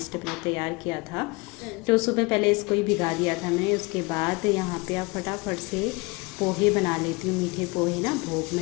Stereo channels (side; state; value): right; quieter; 26.2 dB